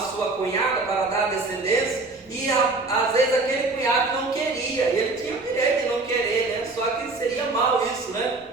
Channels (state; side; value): quieter; left; 3.4 dB